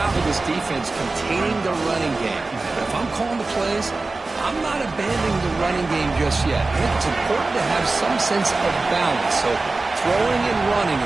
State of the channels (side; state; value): left; quieter; 3.5 dB